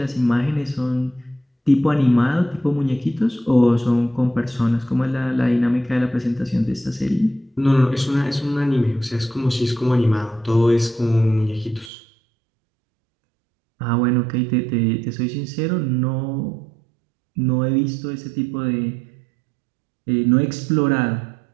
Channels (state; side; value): drops out; left; at 11.9 s